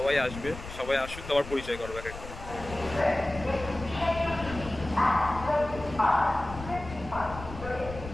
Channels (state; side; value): noise; left; rumble, 12 dB below the sound